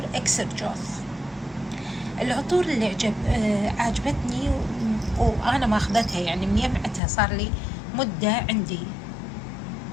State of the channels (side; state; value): right; drops out; at 7.0 s